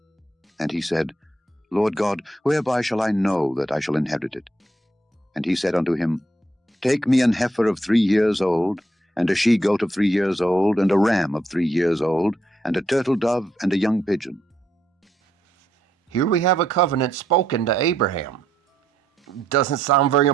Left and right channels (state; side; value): normal; both; correlation 0.76